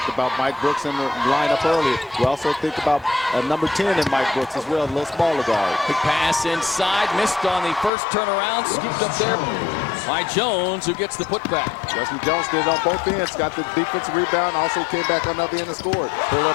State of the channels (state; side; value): drops out; right; at 7.9 s